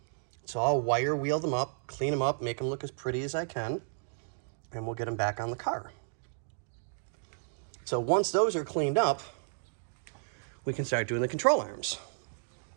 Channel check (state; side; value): silent; left; digital silence